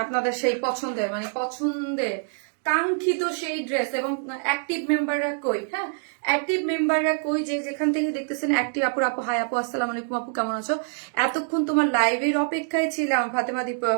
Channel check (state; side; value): silent; left; 61 dB below the other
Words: আপনাদের সেই পছন্দের কাঙ্ক্ষিত সেই ড্রেস এবং অ্যাক্টিভ মেম্বাররা কই? হ্যাঁ, অ্যাক্টিভ মেম্বাররা কই? যে যেখান থেকে দেখতেছেন অ্যাক্টিভ আপু হাই আপু, আসসালামু আলাইকুম আপু, কেমন আছো? এতক্ষণ তোমার লাইভের অপেক্ষায় ছিলাম ফাতেমা দীপা